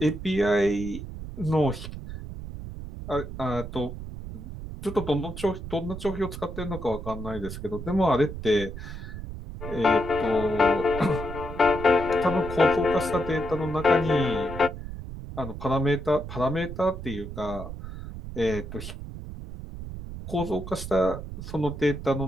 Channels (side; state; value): right; noise; rumble, 9 dB below the sound